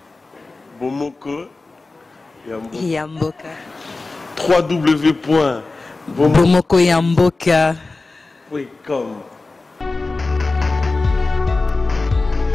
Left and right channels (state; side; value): quieter; right; 3.5 dB